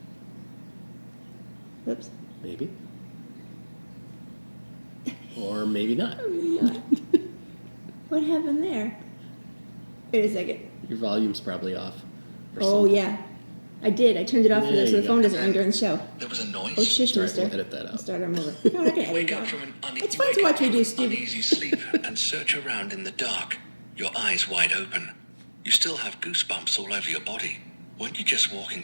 Oops. Maybe. Or maybe not. What happened there? Wait a second. Your volume's probably off. Oh, yeah. I did. I turned it off so the phone doesn't ring during the show. There was a noise. Oh, shush, Sorry, mister. we'll edit that out. I'll start them over. No, I can edit Wake it up out. from an It's fun to watch me do stupid. uneasy sleep and search around in the dark, your eyes wide open. You still have goosebumps all over your body. Weren't you just walking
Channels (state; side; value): inverted; both; correlation -1.00